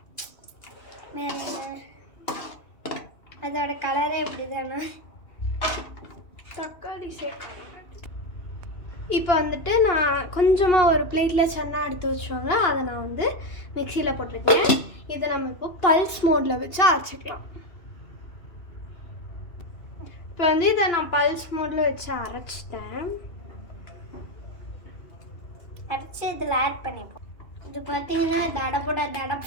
வேற என்ன? அதோட கலரே இப்படி தானே. தக்காளி சேர்க்கணும். இப்போ வந்துட்டு நான் கொஞ்சமாக ஒரு பிளேட்டில் சன்னா எடுத்து வச்சோங்க, அதை நான் வந்து மிக்சியில் போட்டிருக்கேன். இதை நம்ம இப்போ பல்ஸ் மோடில் வச்சு அரைச்சிக்கலாம். இப்போ வந்து இதை நான் பல்ஸ் மோடில் வச்சு அரைச்சிட்டேன். அரைச்சி இதில் ஆட் பண்ணிப்போம். இது பார்த்தீங்கன்னா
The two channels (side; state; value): right; late; 2.7 ms